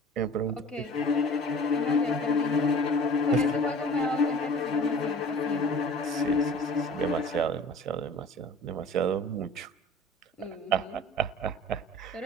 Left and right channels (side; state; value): both; normal; correlation 0.45